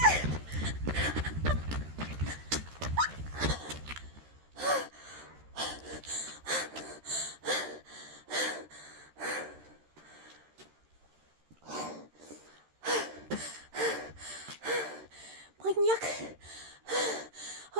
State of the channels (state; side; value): late; left; 13 ms